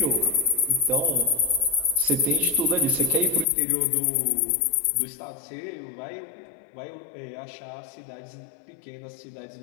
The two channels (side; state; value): right; drops out; at 3.5 s